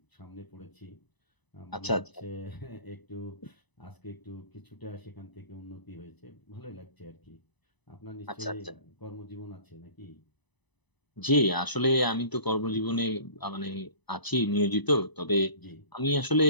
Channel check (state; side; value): late; right; 1.0 ms